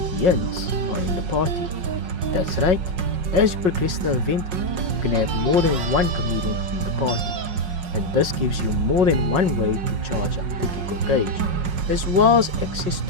are in the party. That's right, as you progress the event, you can have more than one comedian in the party, and this gives you more than one way to charge up the giggle gauge, as well as access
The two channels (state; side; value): late; left; 5.5 ms